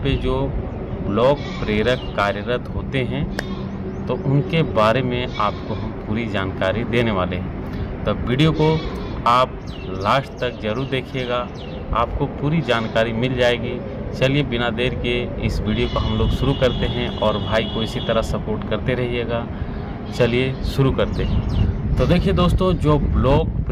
जो ब्लॉक प्रेरक कार्यरत होते हैं तो उनके बारे में आपको हम पूरी जानकारी देने वाले हैं। तो वीडियो को आप लास्ट तक ज़रूर देखिएगा, आपको पूरी जानकारी मिल जाएगी। चलिए बिना देर के इस वीडियो को हम लोग शुरू करते हैं और भाई को इसी तरह सपोर्ट करते रहिएगा। चलिए शुरू करते हैं। तो देखिए दोस्तों, जो ब्लॉक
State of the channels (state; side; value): identical; both; correlation 1.00